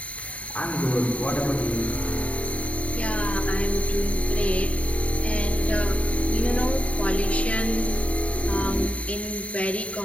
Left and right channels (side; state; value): right; late; 0.065 ms